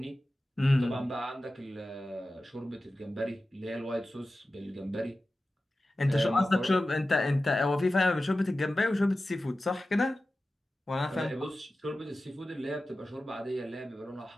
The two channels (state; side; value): normal; both; correlation 0.94